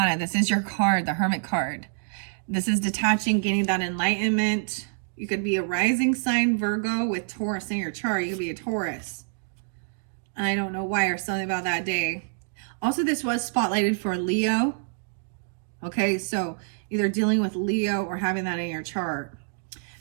This is your card, the Hermit card. This is detaching, gaining that enlightenment. You could be a rising sign Virgo with Taurus in your chart. You could be a Taurus. I don't know why, or something about that day. Also, this was spotlighted for Leo. Okay, so either dealing with Leo or having that in your chart.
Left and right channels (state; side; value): silent; left; digital silence